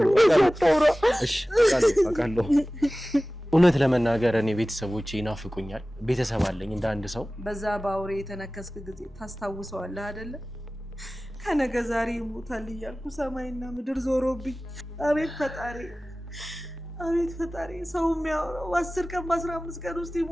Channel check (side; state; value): both; normal; correlation 0.97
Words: እሺ አውቃለሁ እውነት ለመናገር እኔ ቤተሰቦቼ ይናፍቁኛል ቤተሰብ አለኝ እንደ አንድ ሰው በዛ ባውሬ የተነከስክ ጊዜ ታስታውሰዋለህ አይደለ ከነገ ዛሬ ይሞታል እያልኩ ሰማይና ምድር ዞሮብኝ አቤት ፈጣሪ ሰው የሚያወራው 10 ቀን በ15 ቀን ውስጥ